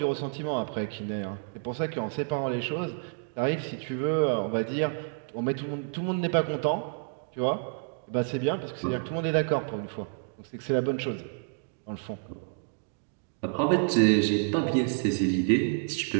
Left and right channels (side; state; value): left; silent; digital silence